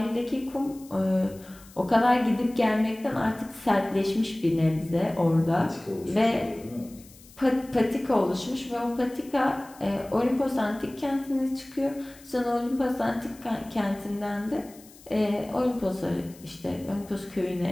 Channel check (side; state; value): left; noise; hiss, 23 dB below the sound